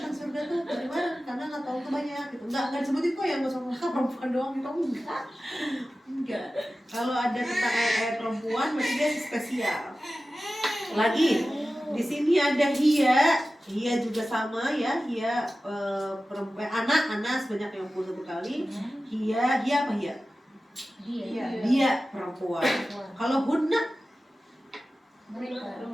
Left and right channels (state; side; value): normal; both; correlation 0.95